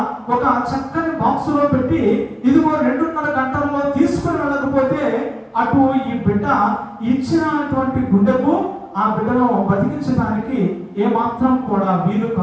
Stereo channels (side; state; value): both; identical; correlation 1.00